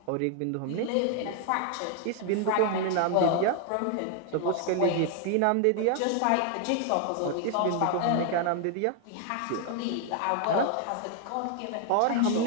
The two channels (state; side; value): different; both; correlation 0.00